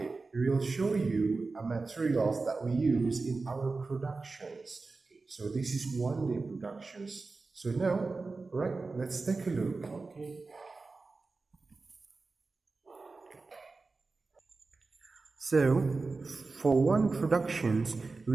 we will show you materials that we use in our productions. So this is one day productions. So now, right, let's take a look. Okay. So, for one productions,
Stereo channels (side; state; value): left; quieter; 3.9 dB